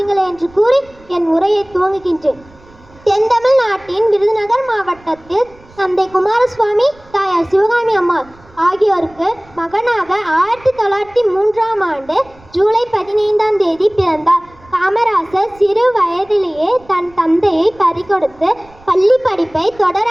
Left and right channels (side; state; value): right; noise; rumble, 26 dB below the sound